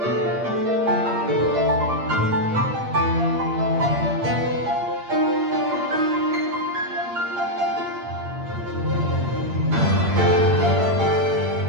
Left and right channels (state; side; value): late; left; 8.6 ms